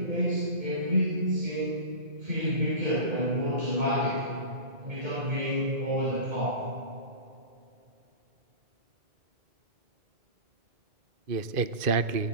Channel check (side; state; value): left; late; 2.5 ms